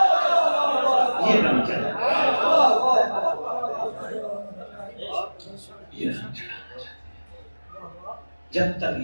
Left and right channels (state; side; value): inverted; both; correlation -1.00